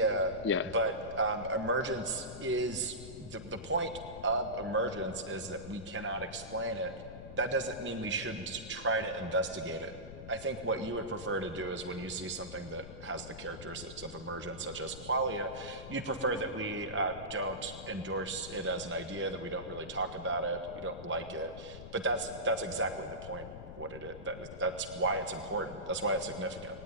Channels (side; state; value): left; noise; rumble, 12 dB below the sound